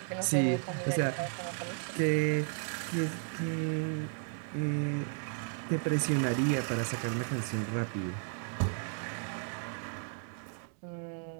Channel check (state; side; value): silent; left; 55 dB below the other